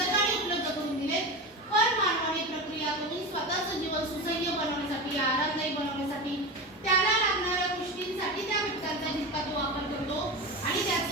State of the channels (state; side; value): normal; both; correlation 0.24